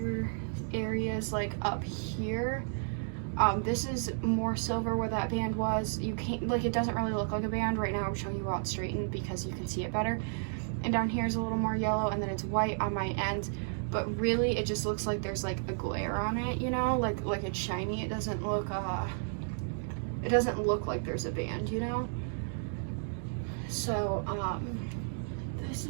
areas like up here. This is more silver where that band was. You can't, like, it doesn't really look like a band. Right now I'm showing you how it's straightened because you can see it better. And down here is a little more yellow, and then it's white on my end. But really it just looks like there's like a glare on it, you know, like it's shiny. It doesn't look like there's a band, you know. So this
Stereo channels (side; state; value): left; silent; digital silence